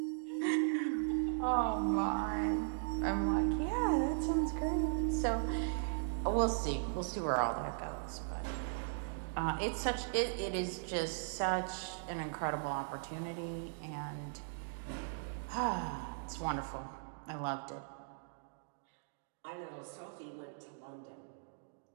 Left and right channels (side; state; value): left; silent; digital silence